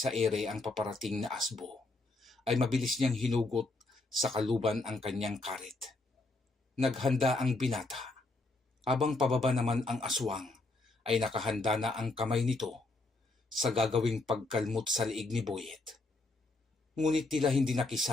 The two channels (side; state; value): right; quieter; 3.0 dB